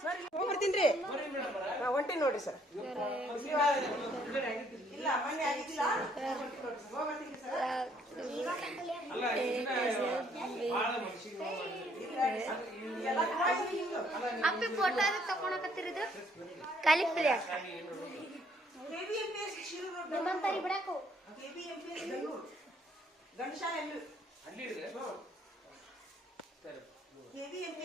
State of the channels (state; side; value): normal; both; correlation 0.66